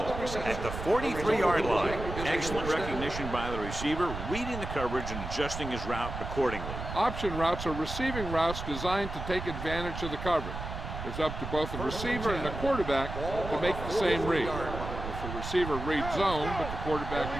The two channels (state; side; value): noise; right; rumble, 7 dB below the sound